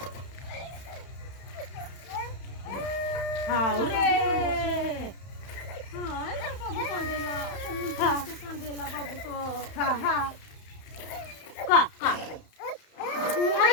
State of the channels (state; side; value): late; right; 31 ms